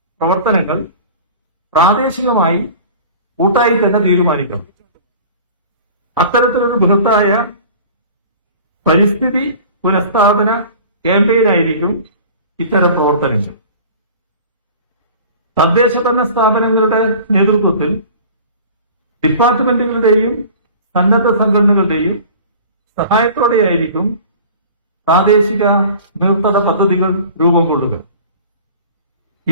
പ്രവർത്തനങ്ങൾ പ്രാദേശികമായി കൂട്ടായി തന്നെ തീരുമാനിക്കണം. അത്തരത്തിലൊരു ബൃഹത്തായ പരിസ്ഥിതി പുനഃസ്ഥാപന ക്യാമ്പയിനായിരിക്കും ഇത്തരം പ്രവർത്തനങ്ങൾ. തദ്ദേശഭരണ സ്ഥാപനങ്ങളുടെ നേതൃത്വത്തിൽ ഡിപ്പാർട്ട്മെന്റുകളുടെയും സന്നദ്ധ സംഘടനകളുടെയും സഹായത്തോടെയായിരിക്കും പ്രാദേശിക നീർത്തട പദ്ധതികൾ രൂപം കൊള്ളുക.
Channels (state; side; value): inverted; both; correlation -0.42